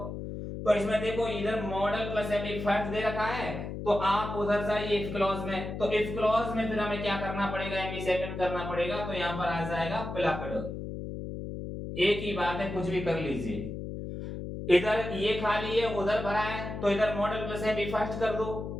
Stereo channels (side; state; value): left; noise; hum, 7 dB below the sound